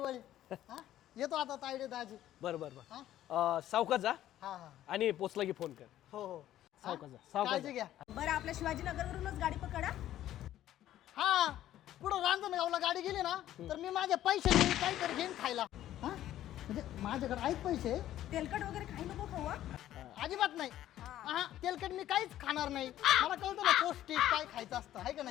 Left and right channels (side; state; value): right; quieter; 12.8 dB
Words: हा येतो आता तायडे दाजी. बर बर हा बर सावकाश जा हा हा आणि पोचला की फोन कर. हो हो सावकाश जा, हा? सावकाश काळजी जा. घ्या. बरं आपल्या शिवाजीनगरवरूनच गाडी पकडा. हा पुढं रांजणगावला गाडी गेली ना तर मी माझ्या पैशाने काहीतरी घेईन खायला. हा म्हणजे माझ्याकडे आहेत पैसे. तेलकट वगैरे काही नको खाऊ हा. अजिबात नाही. हा तेलकट मी काहीच खाणार नाही. मला कळतं ना पौष्टिक काय खायचं असतं आहे का